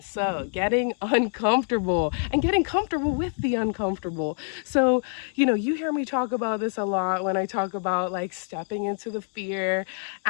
So getting uncomfortable and getting comfortable with the uncomfortable. So, you hear me talk about this a lot when I talk about like stepping into the fear,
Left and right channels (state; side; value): silent; right; 61 dB below the other